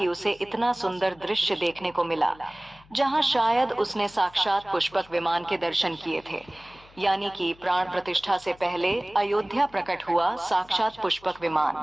उसे इतना सुंदर दृश्य देखने को मिला, जहां शायद उसने साक्षात पुष्पक विमान के दर्शन किए थे। यानी कि प्राण प्रतिष्ठा से पहले अयोध्या प्रकट हुआ साक्षात पुष्पक विमान।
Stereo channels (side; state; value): left; noise; hum, 26 dB below the sound